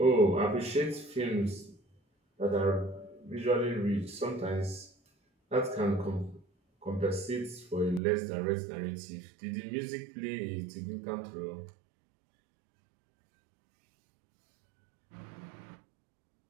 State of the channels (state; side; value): drops out; left; at 8.0 s